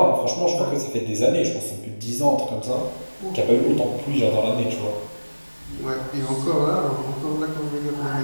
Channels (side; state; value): both; inverted; correlation -1.00